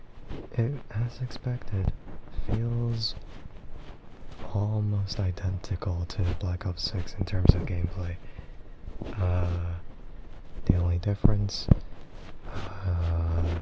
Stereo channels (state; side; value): identical; both; correlation 1.00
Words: It, as expected, feels almost identical to Black Ops 6 in terms of gameplay. The only difference, I